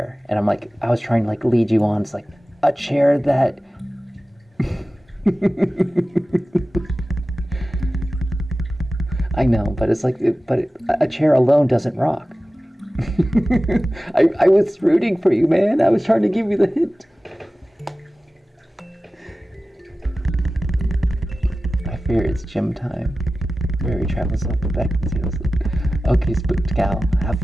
and I'm like, I was trying to like lead you on. It's like a chair that. I know, but it's like, a chair alone doesn't rock. I was rooting for you, man. I was trying to give you the hint. I fear it's gym time. Fairy travels up the back and sails. Okay, spooked gal, have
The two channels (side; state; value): both; normal; correlation 0.95